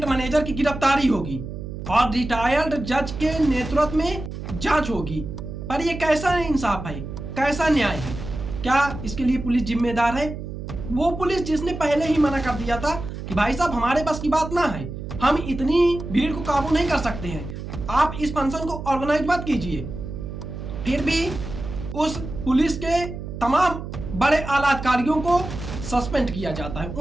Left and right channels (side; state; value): right; noise; hum, 8 dB below the sound